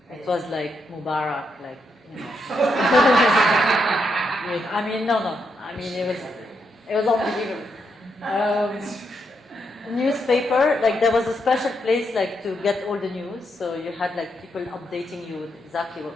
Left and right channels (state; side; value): normal; both; correlation 0.80